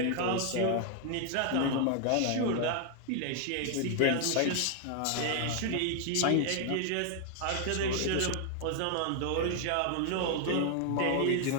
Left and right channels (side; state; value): both; different; correlation 0.00